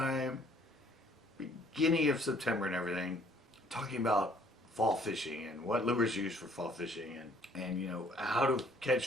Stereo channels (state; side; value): normal; both; correlation 0.60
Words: beginning of September and everything, talking about fall fishing and what lures use for fall fishing and how to